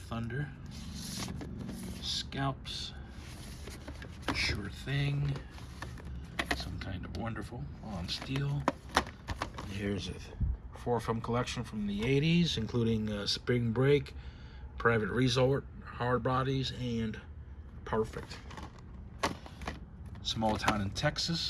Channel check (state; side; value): identical; both; correlation 1.00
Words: Scalps, Sure Thing, Some Kind of Wonderful on Steel. Here's a 4-film collection from the 80s, including Spring Break, Private Resort, Hard Bodies, and Perfect. Small Town in